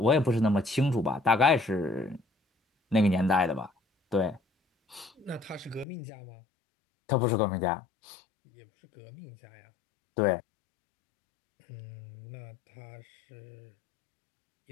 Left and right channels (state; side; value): drops out; right; at 5.9 s